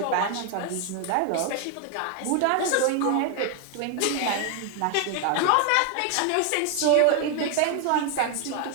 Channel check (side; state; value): both; different; correlation 0.01